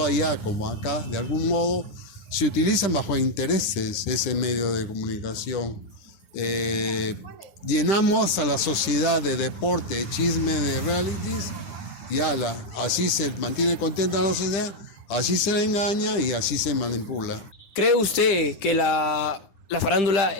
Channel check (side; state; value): right; late; 9.7 ms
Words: allá como acá, de algún modo, se utilizan bajo intereses ese medio de comunicación. Llenamos a la sociedad de deporte, de chisme, de realities, y así se mantiene contenta la sociedad, así se le engaña y así se manipula. ¿Cree usted que la farándula